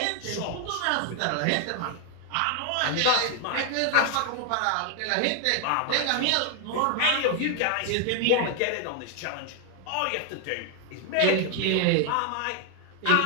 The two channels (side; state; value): both; different; correlation 0.00